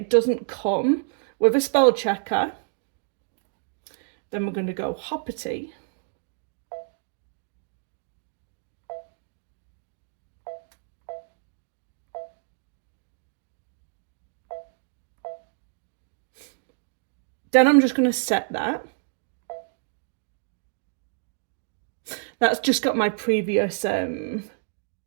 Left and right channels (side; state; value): left; silent; 58 dB below the other